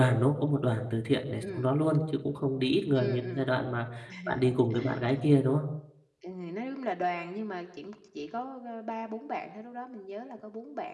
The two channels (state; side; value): identical; both; correlation 1.00